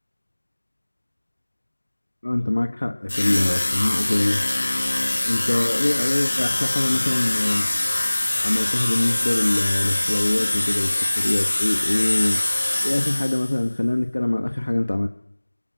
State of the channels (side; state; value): both; inverted; correlation -1.00